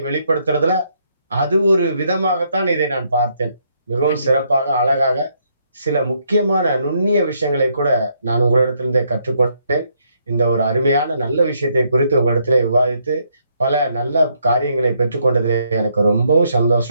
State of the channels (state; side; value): inverted; both; correlation -0.73